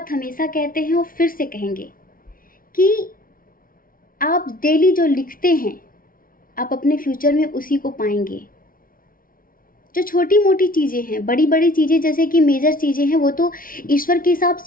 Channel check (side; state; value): right; late; 0.41 ms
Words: हमेशा कहते हैं और फिर से कहेंगे कि आप डेली जो लिखते हैं आप अपने फ्यूचर में उसी को पाएंगे। जो छोटी मोटी चीज़ें हैं, बड़ी बड़ी चीज़ें जैसे कि मेजर चीज़ें हैं वो तो ईश्वर के हिसाब